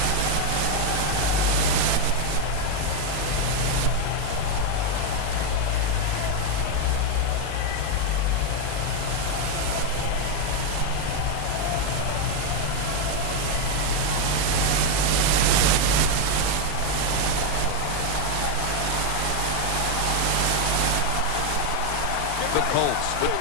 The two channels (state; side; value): different; both; correlation 0.01